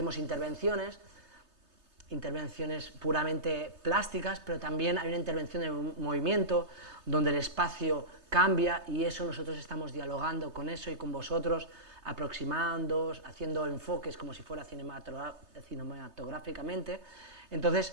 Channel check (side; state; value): left; late; 3.3 ms